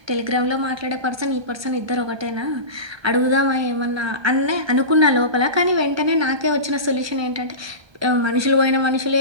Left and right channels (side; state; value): left; late; 1.2 ms